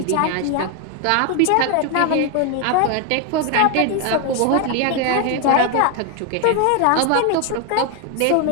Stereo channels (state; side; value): different; both; correlation 0.01